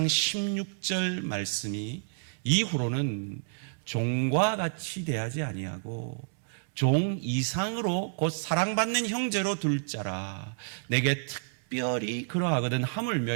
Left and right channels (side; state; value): left; silent; digital silence